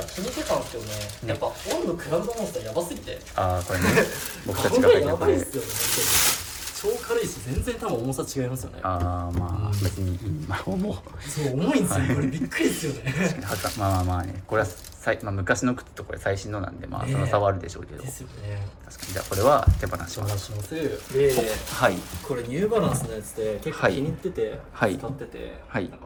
あ気にしてたんですけどね。やっぱオンのクラウドモンスターやばすぎて。これね。僕たちが履いてるこれ。超軽いし全然多分重さ違いますよね。まあ別に重い。そう重いんですよ。これびっくりですよね。まあね、これはまあ、昔の靴とこれ最新のなんで、まあその差はあるでしょうけど、ですよね。確かにじゃあこれは手放します。しますで、はいこれニューバランスのやつで結構気に入ってて、はい使ってて、はいなんか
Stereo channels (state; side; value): identical; both; correlation 1.00